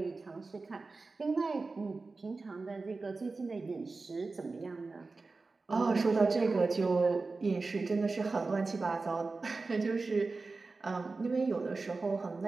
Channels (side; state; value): left; quieter; 3.8 dB